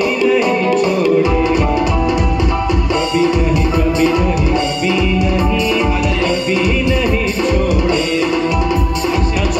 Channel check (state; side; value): identical; both; correlation 1.00